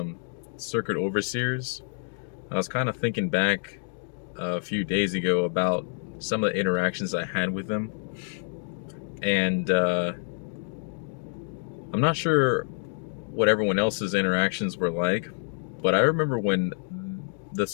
circuit overseers. I was kind of thinking back a few days ago about some of the interactions I had with them, and I'm not sure what everyone else's interactions were like, but I remember when the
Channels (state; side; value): silent; right; 60 dB below the other